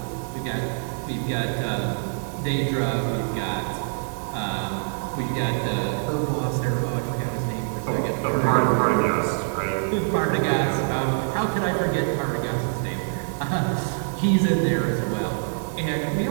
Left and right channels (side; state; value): left; silent; 62 dB below the other